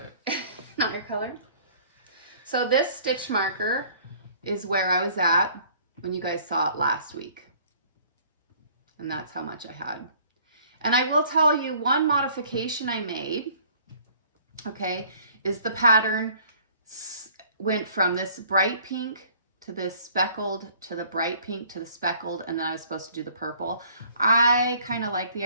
Not your color? So this stitch marker is where I was at when you guys saw it last week. And that's how much I had. And I will tell you one modification I made, okay, is the pattern went from this bright pink to this speckled to the bright pink to the speckled, and then I was supposed to do the purple. I kind of like the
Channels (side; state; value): both; inverted; correlation -0.55